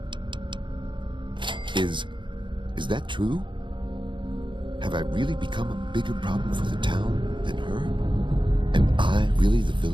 Is that true? Have I really become a bigger problem for the town than her? Am I really the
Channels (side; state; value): left; late; 0.23 ms